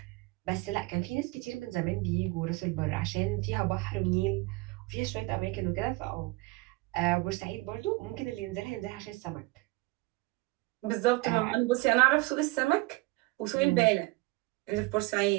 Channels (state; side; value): quieter; left; 22.8 dB